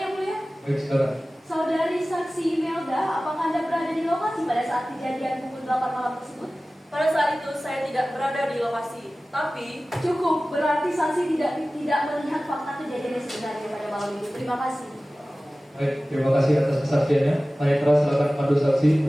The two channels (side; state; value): both; normal; correlation 0.97